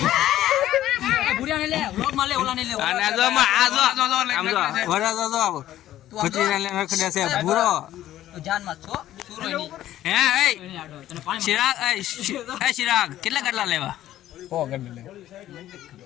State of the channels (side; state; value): right; quieter; 13.3 dB